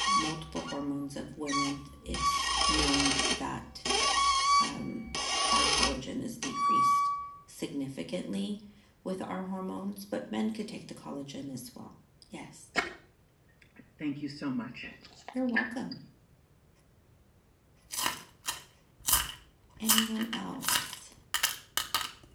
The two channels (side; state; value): both; identical; correlation 1.00